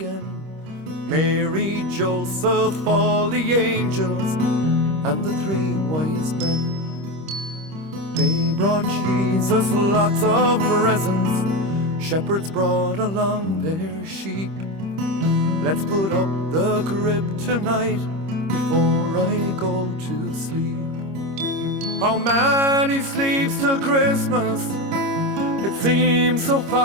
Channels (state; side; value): late; left; 25 ms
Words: Mary, Joseph, all the angels, and the 3 wise men. They brought Jesus lots of presents. Shepherds brought along their sheep. Let's put up the crib tonight before I go to sleep. How many sleeps till Christmas? It seems so